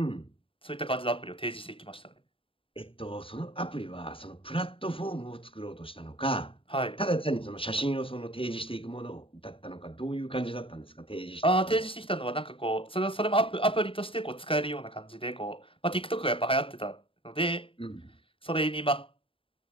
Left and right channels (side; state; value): right; late; 0.26 ms